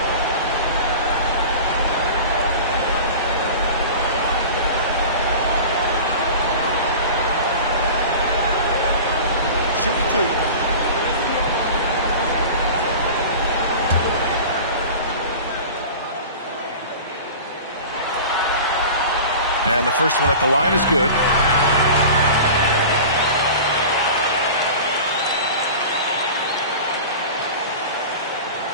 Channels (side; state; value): both; inverted; correlation -0.36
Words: Shoot 2. And the first one at the line is good.